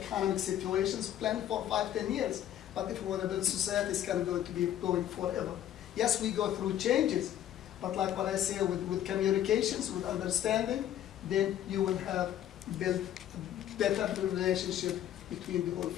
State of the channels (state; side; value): quieter; right; 11.4 dB